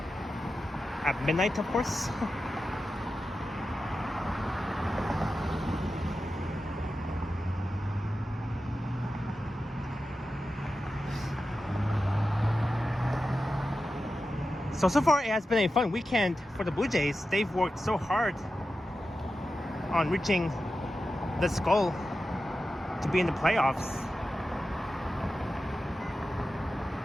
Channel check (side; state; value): both; normal; correlation 0.92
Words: At midnight, of course. So far it has been a fun weekend for the Blue Jays. They've worked so hard on reaching this goal to be in the playoffs.